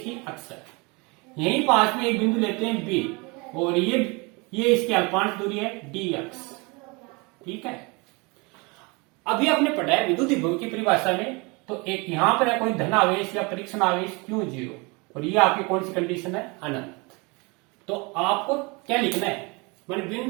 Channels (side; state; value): left; quieter; 28.0 dB